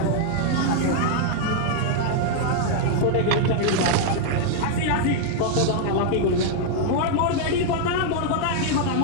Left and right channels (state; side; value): different; both; correlation -0.01